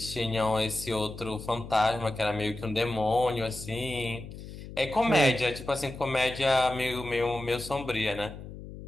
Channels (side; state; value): left; noise; hum, 12 dB below the sound